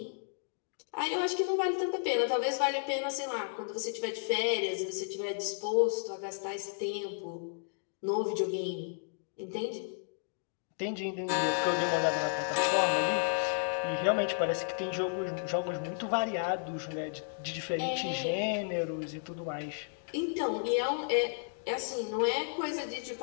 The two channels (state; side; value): silent; right; digital silence